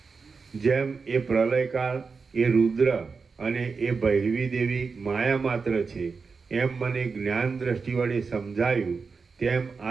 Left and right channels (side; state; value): left; quieter; 4.9 dB